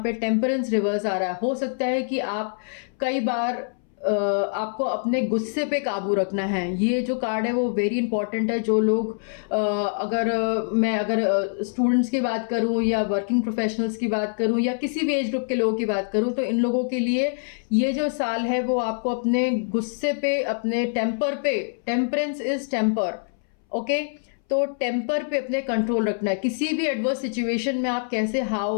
पे टेम्परेंस रिवर्स आ रहा है। हो सकता है कि आप कई बार आपको अपने गुस्से पे काबू रखना है। ये जो कार्ड है वो वेरी इंपॉर्टेंट है। जो लोग अगर स्टूडेंट्स की बात करूं या वर्किंग प्रोफेशनल्स की बात करूं या किसी भी एज ग्रुप के लोगों की बात करूं तो इन लोगों के लिए ये जो साल है वो आपको अपने गुस्से पे, अपने टेम्पर पे, टेम्परेंस इज टेम्पर, ओके, तो टेम्पर पे अपने कंट्रोल रखना है। किसी भी एडवर्स सिचुएशन में आप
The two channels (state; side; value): silent; right; 61 dB below the other